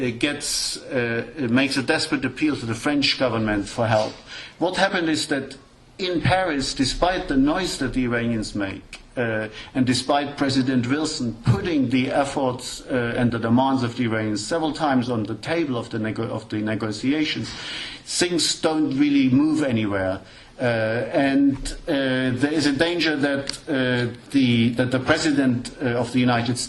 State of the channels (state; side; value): identical; both; correlation 1.00